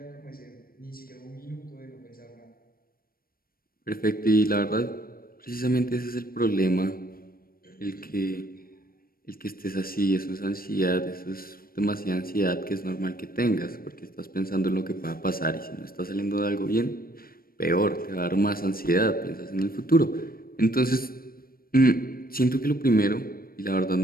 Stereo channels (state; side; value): late; right; 0.43 ms